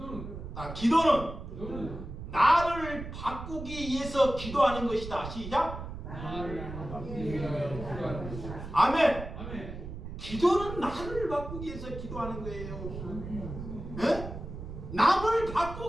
나를 바꾸기 위해서 기도하는 것이다. 시작. 아멘. 기도는 나를 바꾸기 위해서 기도하는 거예요. 네? 남을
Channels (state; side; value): noise; right; rumble, 9 dB below the sound